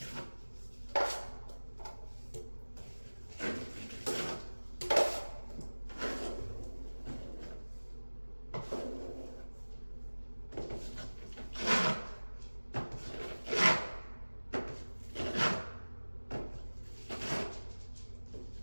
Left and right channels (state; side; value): inverted; both; correlation -1.00